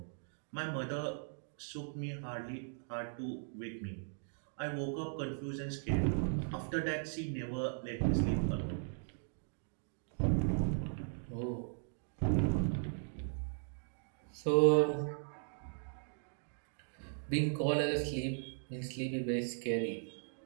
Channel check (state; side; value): silent; left; digital silence